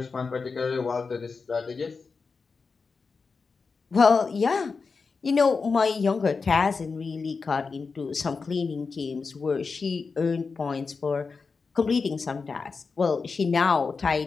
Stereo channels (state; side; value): quieter; right; 4.7 dB